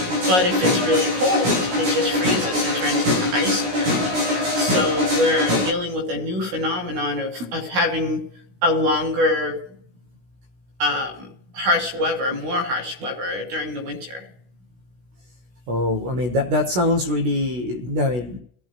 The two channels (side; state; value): left; late; 16 ms